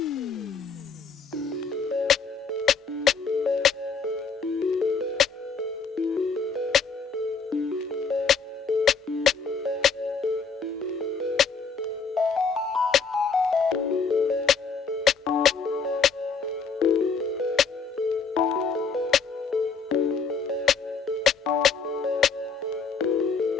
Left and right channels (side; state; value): right; quieter; 5.3 dB